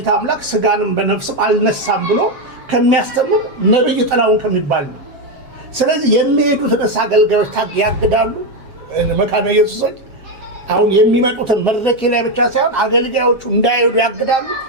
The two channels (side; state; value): left; late; 7.4 ms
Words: አምላክ ስጋንም በነፍስም አልነሳም ብሎ ከሚያስተምር ነብይ ጥላውን ከሚባል ነው። ስለዚህ የሚሄዱት አገልጋዮች ያግዳሉ። መካነ ኢየሱሶች አሁን የሚመጡትን መድረክ ላይ ብቻ ሳይሆን አገልጋዮቹ እንዳይሄዱ ያግዳሉ።